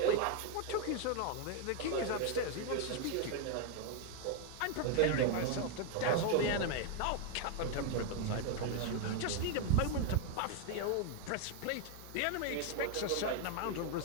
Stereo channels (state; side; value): different; both; correlation 0.01